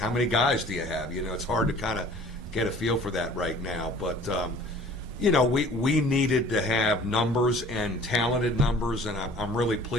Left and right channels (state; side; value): normal; both; correlation 0.49